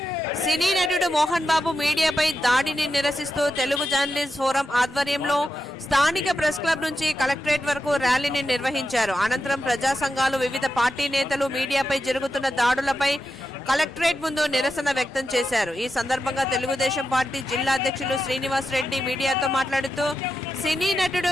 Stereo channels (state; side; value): normal; both; correlation 0.88